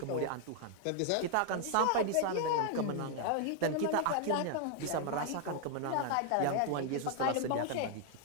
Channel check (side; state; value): both; different; correlation 0.00